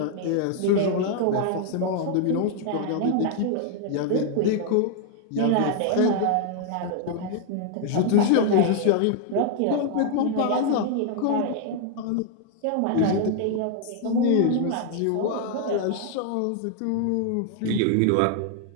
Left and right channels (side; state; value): both; different; correlation 0.00